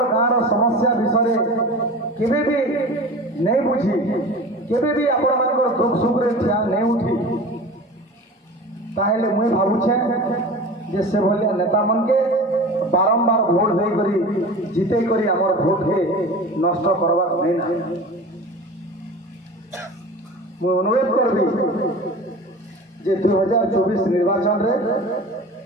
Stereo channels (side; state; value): both; normal; correlation 0.36